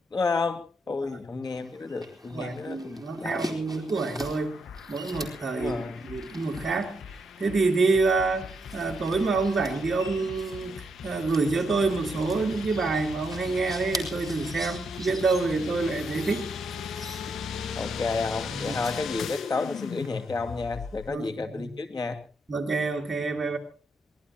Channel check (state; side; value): normal; both; correlation 0.79